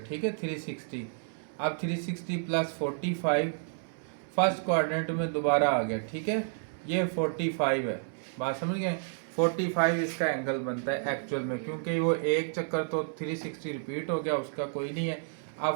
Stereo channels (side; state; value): left; silent; digital silence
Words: है, 360। अब 360 प्लस 45 फर्स्ट क्वाड्रेंट में दोबारा आ गया। ठीक है, ये 45 है, बात समझ गए। 45 इसका एंगल बनता है एक्चुअल में, क्योंकि वो एक चक्कर तो 360 रिपीट हो गया, उसका कोई नहीं है।